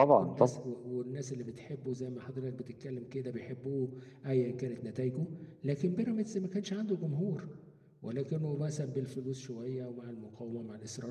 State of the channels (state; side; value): identical; both; correlation 1.00